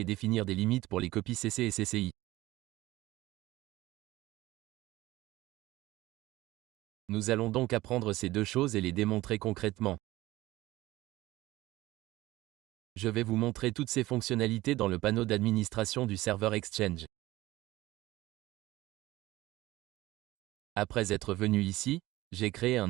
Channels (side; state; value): left; quieter; 17.7 dB